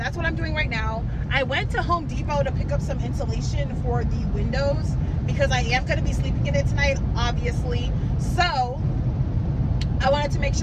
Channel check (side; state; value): both; identical; correlation 1.00